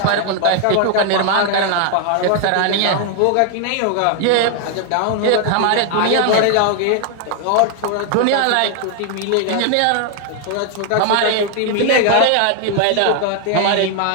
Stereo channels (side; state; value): both; different; correlation 0.00